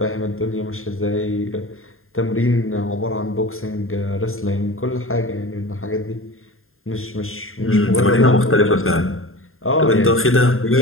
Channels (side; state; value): right; late; 0.61 ms